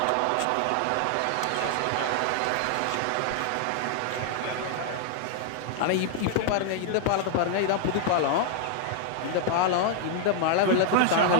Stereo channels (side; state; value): both; different; correlation 0.00